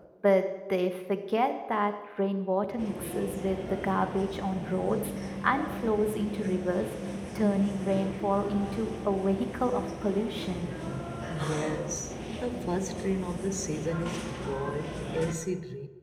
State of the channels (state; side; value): identical; both; correlation 1.00